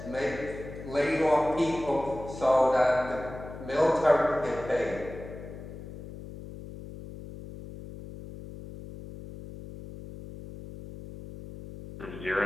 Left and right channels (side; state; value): left; noise; hum, 13 dB below the sound